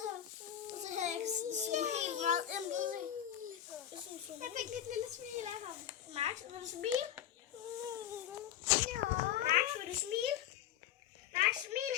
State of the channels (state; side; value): quieter; right; 10.9 dB